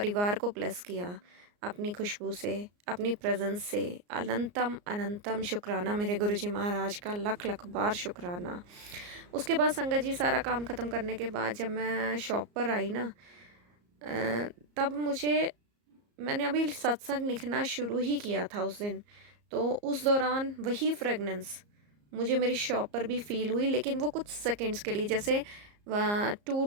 को ब्लेस किया अपनी खुशबू से, अपनी प्रेजेंस से। अनंतम अनंतम शुक्राना मेरे गुरुजी महाराज का, लख लख बार शुक्राना। उसके बाद संगत जी सारा काम ख़त्म करने के बाद जब मैं शॉप पर आई ना, तब मैंने अभी सत्संग लिखना शुरू ही किया था उस दिन। तो उस दौरान वही फ्रेगनेंस मुझे मेरी शॉप पर भी फील हुई, लेकिन वो कुछ सेकंड्स के लिए, जैसे 2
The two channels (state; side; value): late; left; 34 ms